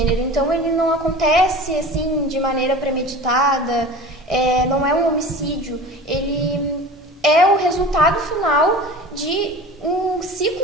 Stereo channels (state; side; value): normal; both; correlation 0.37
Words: então ele não acontece assim de maneira premeditada, não é um homicídio, ele é o resultado final de um